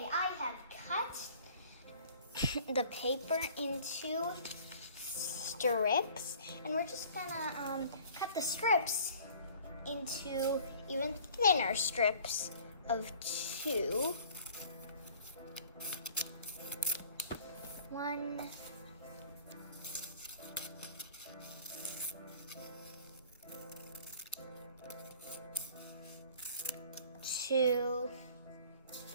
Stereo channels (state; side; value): inverted; both; correlation -0.50